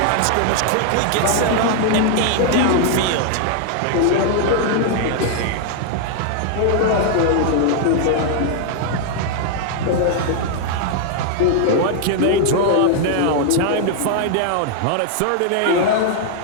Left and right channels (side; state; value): both; different; correlation 0.00